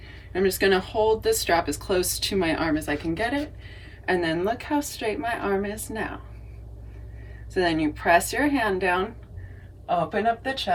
I'm just going to hold this strap as close to my arm as I can get it, and then look how straight my arm is now. So then you press your hand down, open up the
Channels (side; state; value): both; identical; correlation 1.00